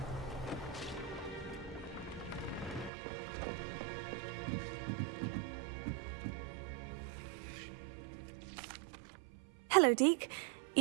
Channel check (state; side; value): drops out; left; at 2.9 s